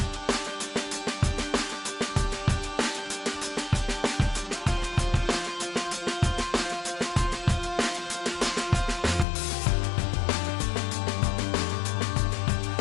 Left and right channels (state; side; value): drops out; right; at 9.2 s